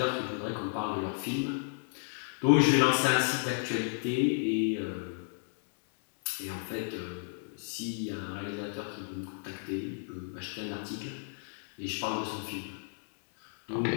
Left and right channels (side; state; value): right; silent; 56 dB below the other